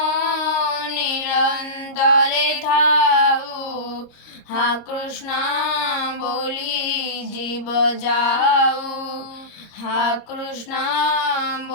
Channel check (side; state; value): right; late; 26 ms